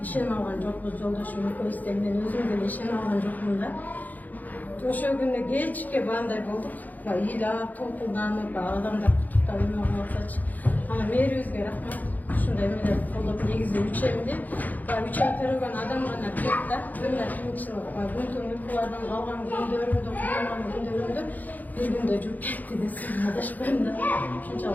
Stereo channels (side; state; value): right; late; 0.082 ms